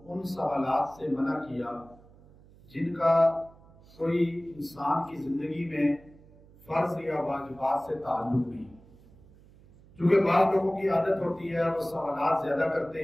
ان سوالات سے منع کیا جن کا کوئی انسان کی زندگی میں فرض یا واجبات سے تعلق نہیں، کیونکہ بعض لوگوں کی عادت ہوتی ہے وہ سوالات زیادہ کرتے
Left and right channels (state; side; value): noise; right; hum, 25 dB below the sound